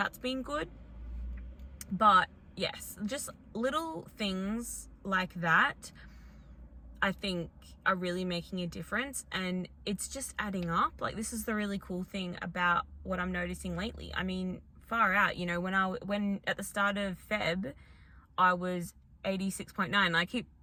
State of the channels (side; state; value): both; identical; correlation 1.00